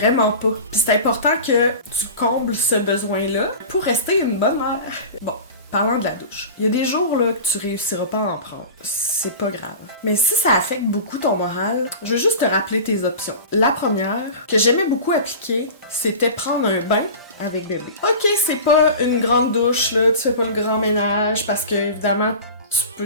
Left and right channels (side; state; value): both; inverted; correlation -0.34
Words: pas. Pis c'est important que tu combles ce besoin-là pour rester une bonne mère. Bon. Parlant de la douche, il y a des jours là que tu réussiras pas à en prendre. C'est pas grave. Mais si ça affecte beaucoup ton moral, je veux juste te rappeler tes options. La première, que j'aimais beaucoup appliquer, c'était prendre un bain avec bébé. Ok, c'est pas une grande douche, là, tu fais pas le grand ménage parce que, évidemment, tu peux